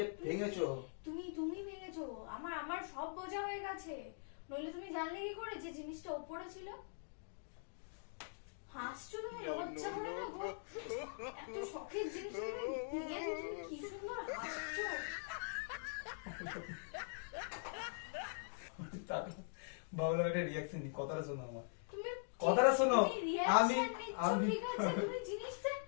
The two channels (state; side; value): silent; right; digital silence